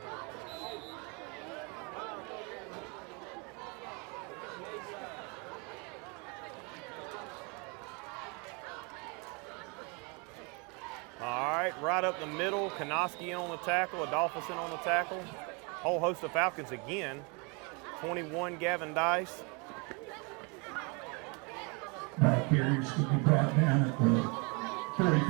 All right, right up the middle, Kanoski in on the tackle, Adolphus in on the tackle. Whole host of Falcons again. 21, Gavin Dice. Carriers to be brought down at the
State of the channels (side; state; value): left; quieter; 31.6 dB